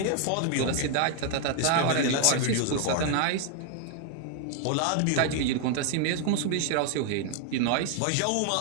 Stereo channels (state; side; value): different; both; correlation 0.00